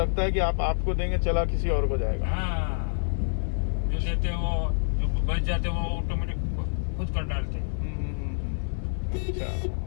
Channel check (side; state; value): right; silent; digital silence